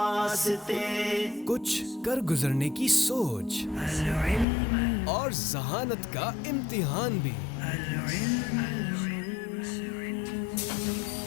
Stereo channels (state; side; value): drops out; right; at 4.5 s